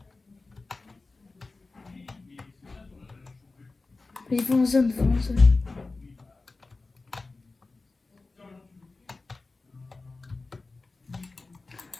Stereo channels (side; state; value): right; quieter; 3.6 dB